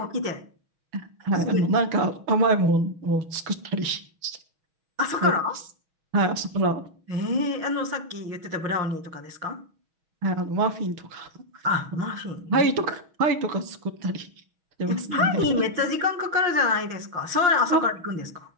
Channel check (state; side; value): late; left; 6.3 ms